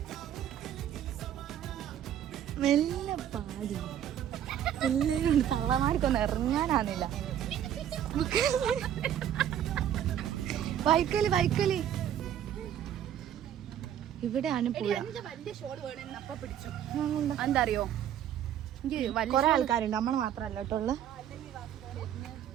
മെല്ലെ പാടി എല്ലാവരും ഉണ്ട്. തള്ളമാർക്കൊന്നും ഇറങ്ങാനാന്നില്ല. വൈക്കല് ഇവിടെയാണ് പുഴ. എന്താ അറിയോ, കൊറേ ആൾക്കാരുണ്ട്, നമ്മള് മാത്രല്ല കേട്ടോ ഉള്ള.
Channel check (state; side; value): quieter; left; 10.3 dB